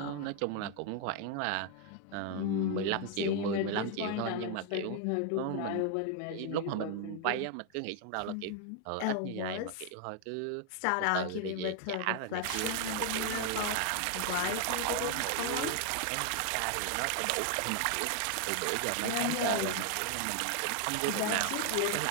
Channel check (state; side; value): different; both; correlation 0.00